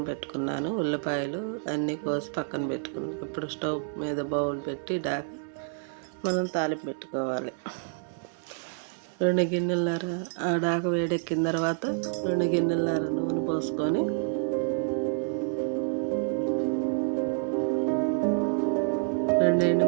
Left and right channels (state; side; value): silent; left; 59 dB below the other